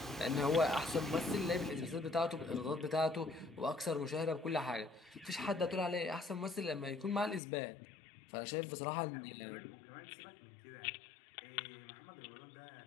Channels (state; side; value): drops out; right; at 7.4 s